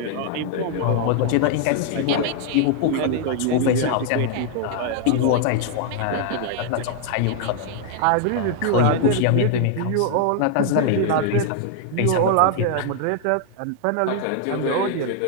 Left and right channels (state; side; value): different; both; correlation 0.00